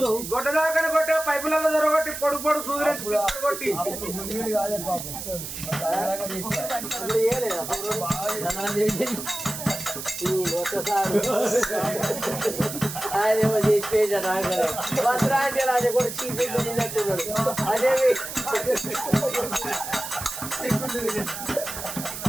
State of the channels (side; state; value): right; noise; hiss, 8 dB below the sound